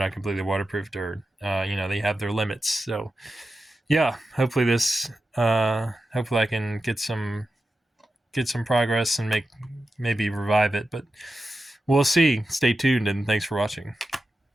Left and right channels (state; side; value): normal; both; correlation 0.91